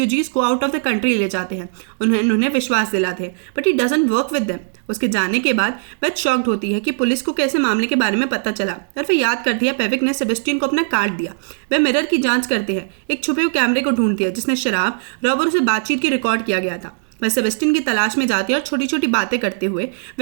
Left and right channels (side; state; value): left; silent; 67 dB below the other